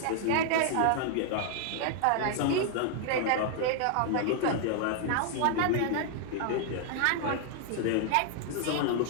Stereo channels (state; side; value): different; both; correlation 0.00